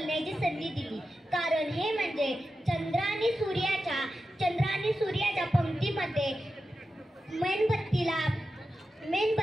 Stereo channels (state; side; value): normal; both; correlation 0.91